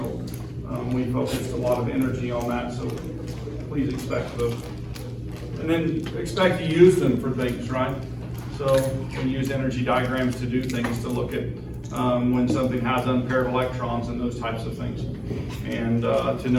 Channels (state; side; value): identical; both; correlation 1.00